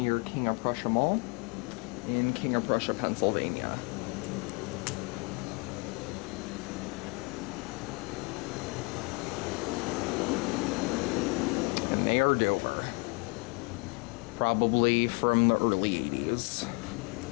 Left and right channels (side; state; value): right; quieter; 31.0 dB